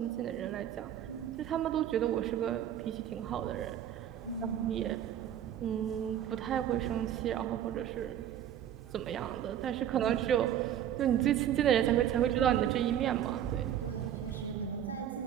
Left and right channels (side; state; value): left; quieter; 10.4 dB